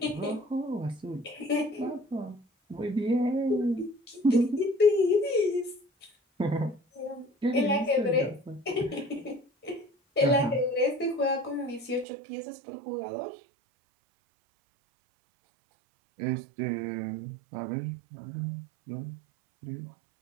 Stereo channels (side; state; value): left; drops out; at 12.1 s